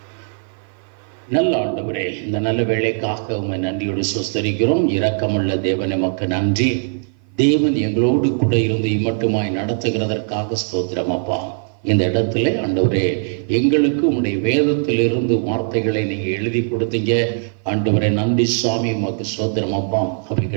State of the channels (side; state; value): left; silent; 55 dB below the other